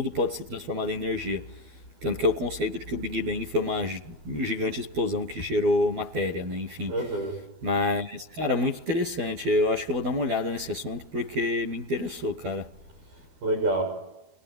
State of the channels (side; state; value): left; late; 12 ms